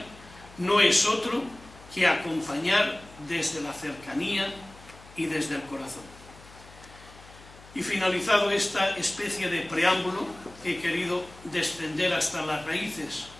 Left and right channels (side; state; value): left; noise; hum, 21 dB below the sound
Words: no es otro que acompañar desde la cercanía y desde el corazón. Y finalizado esta especie de preámbulo, he querido descender hasta las raíces,